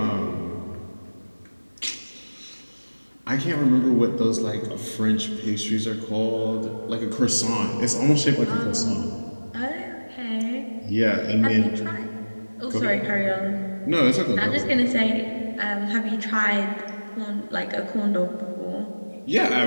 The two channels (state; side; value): inverted; both; correlation -1.00